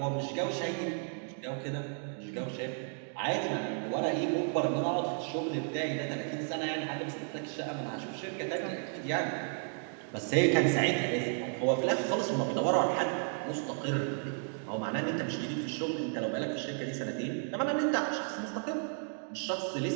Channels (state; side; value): silent; left; 56 dB below the other